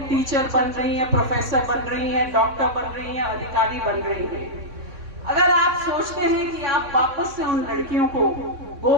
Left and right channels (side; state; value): left; late; 3.6 ms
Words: टीचर बन रही हैं, प्रोफेसर बन रही हैं, डॉक्टर बन रही हैं, अधिकारी बन रही हैं। अगर आप सोचते हैं कि आप वापस से उन लड़कियों को